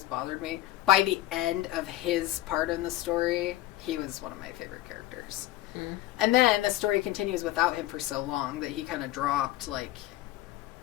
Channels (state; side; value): quieter; right; 15.2 dB